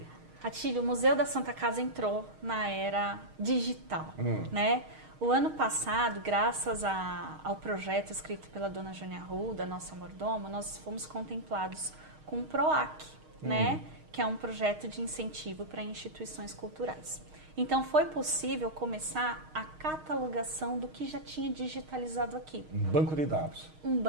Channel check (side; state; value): left; late; 6.5 ms